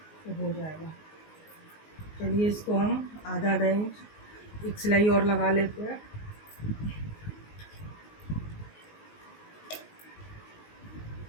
तो हो जाएगा। चलिए इसको हम आधा इंच एक सिलाई और लगा लेते हैं।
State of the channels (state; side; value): late; right; 19 ms